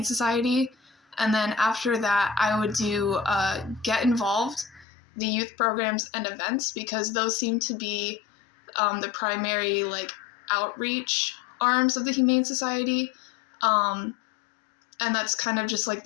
Society. And then after that, I would do get involved, the youth programs and events, because those seem to be the primary like outreach arms of the Humane Society. And that's kind of just like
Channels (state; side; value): drops out; right; at 4.9 s